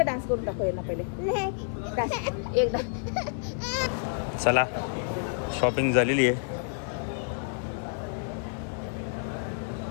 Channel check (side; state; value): right; silent; 59 dB below the other